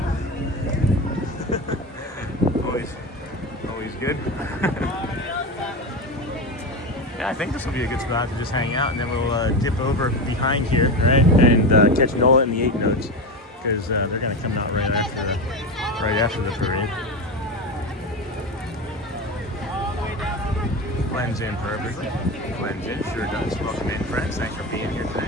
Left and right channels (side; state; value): both; normal; correlation 0.20